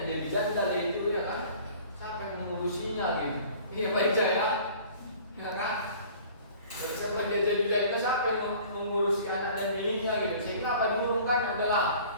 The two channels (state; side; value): inverted; both; correlation -0.48